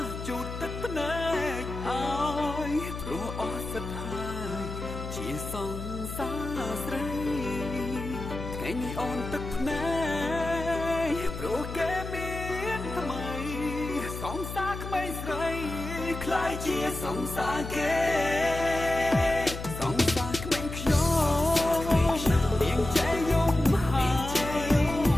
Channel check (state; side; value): noise; left; hum, 8 dB below the sound